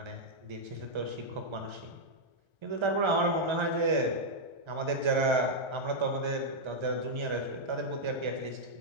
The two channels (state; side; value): late; left; 1.3 ms